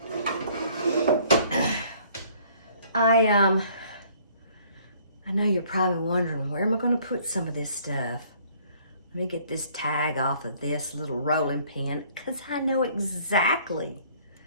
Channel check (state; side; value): inverted; both; correlation -0.58